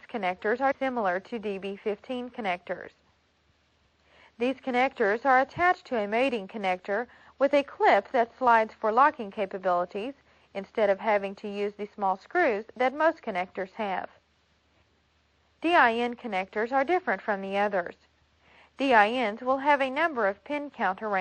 connectors are similar to DB15 connectors. These connectors are attached to a mating connector with a clip that slides for locking capabilities instead of having to use the small screws that most connectors have. DIN connectors are different from the others. DINs will have a number of pin count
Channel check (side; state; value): both; identical; correlation 1.00